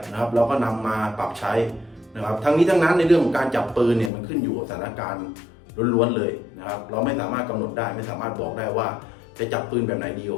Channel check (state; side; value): drops out; right; at 4.1 s